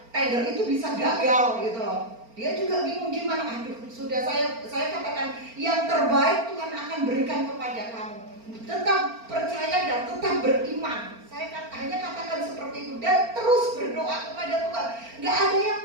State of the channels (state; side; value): late; left; 4.4 ms